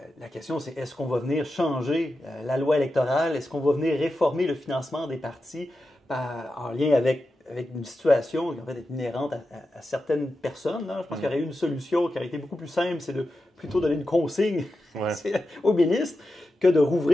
La question, c'est est-ce qu'on va venir changer la loi électorale? Est-ce qu'on va venir réformer le financement des partis en lien avec une situation qui en fait est inhérente à certaines personnes? Là. Je pense qu'il y aurait eu une solution qui aurait été beaucoup plus simple, c'est de plutôt donner une consigne au ministre que de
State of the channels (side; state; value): both; normal; correlation 0.90